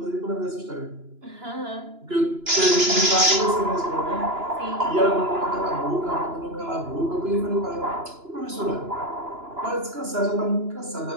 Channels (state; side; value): late; left; 2.9 ms